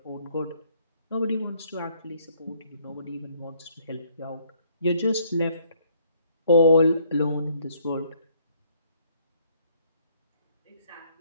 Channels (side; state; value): both; inverted; correlation -0.65